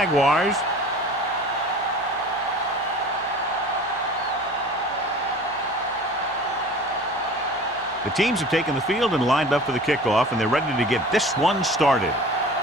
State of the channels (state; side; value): normal; both; correlation 0.42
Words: The teams have taken the field and lined up for the kickoff, and they're ready to get this one started.